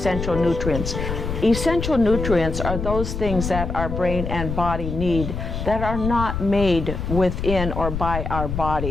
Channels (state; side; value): noise; left; rumble, 4 dB below the sound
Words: nutrients. Essential nutrients are those things that our brain and body need that are not made within or by our